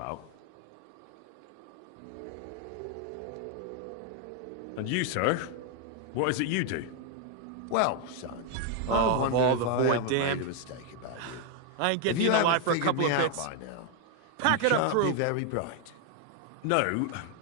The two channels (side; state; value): both; different; correlation 0.01